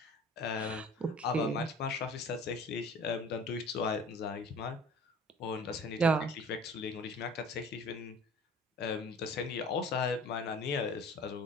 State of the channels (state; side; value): normal; both; correlation 0.45